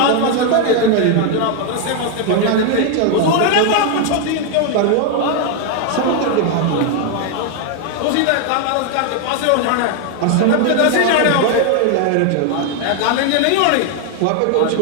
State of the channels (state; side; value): different; both; correlation 0.00